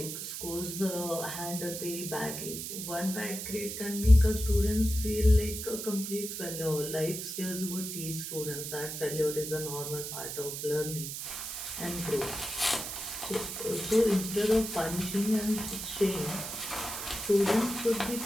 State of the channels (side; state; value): right; noise; hiss, 6 dB below the sound